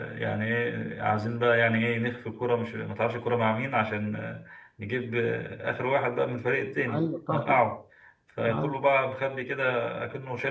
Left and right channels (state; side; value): identical; both; correlation 1.00